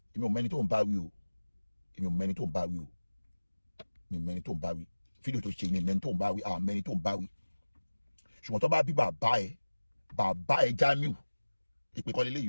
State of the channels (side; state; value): both; inverted; correlation -1.00